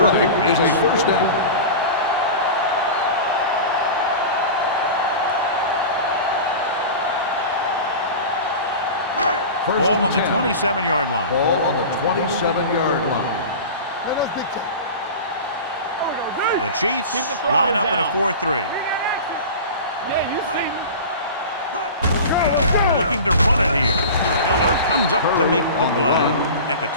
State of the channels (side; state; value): both; inverted; correlation -0.32